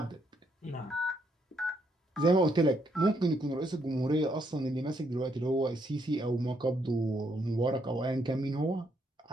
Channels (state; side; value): normal; both; correlation 0.74